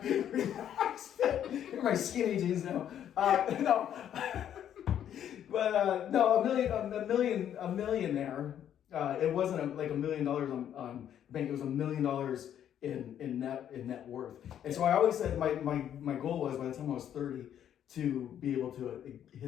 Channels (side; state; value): right; quieter; 10.0 dB